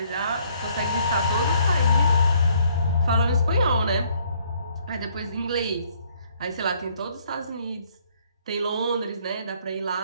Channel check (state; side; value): inverted; both; correlation -0.65